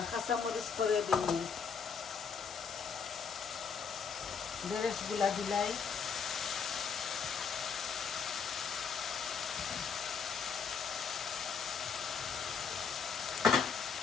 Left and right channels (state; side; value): quieter; right; 6.2 dB